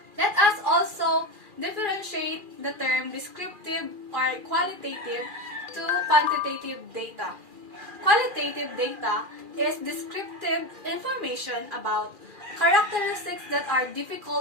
Let us also differentiate the term descriptive or qualitative to quantitative data. Qualitative data is descriptive information about characteristics that are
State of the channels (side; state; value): left; late; 2.4 ms